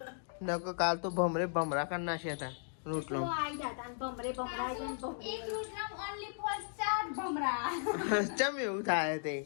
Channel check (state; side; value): silent; right; digital silence